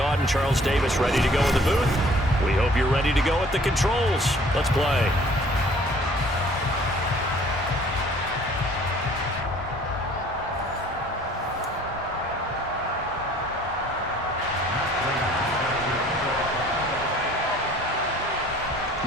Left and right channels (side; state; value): both; normal; correlation 0.54